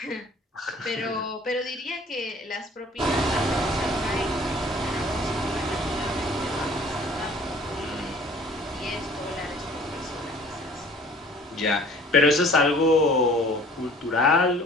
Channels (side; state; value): both; normal; correlation 0.51